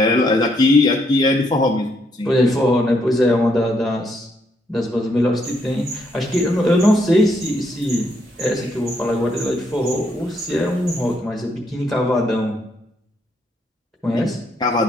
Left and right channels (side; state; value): both; normal; correlation 0.74